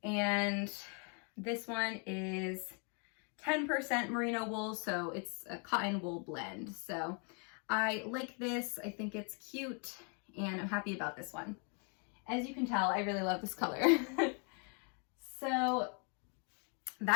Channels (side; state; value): right; quieter; 38.0 dB